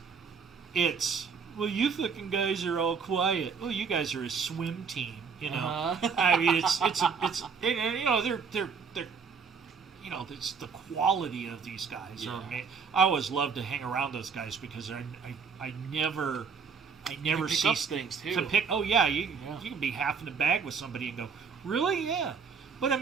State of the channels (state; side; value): quieter; left; 5.9 dB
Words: it's, well, you fucking guys are all quiet. Well, you guys are a swim team. I mean, it's it's the quality of these guys. Yeah. I always love to hang around those guys because I never see up things too. To pick. Oh yeah, you can be half in the bag with somebody and go, really? Yeah. But I